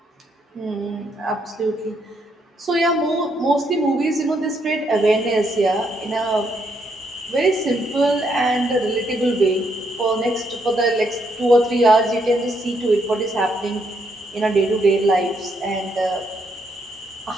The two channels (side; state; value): both; normal; correlation 0.75